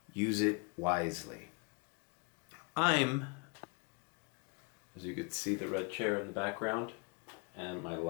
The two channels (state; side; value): quieter; right; 33.3 dB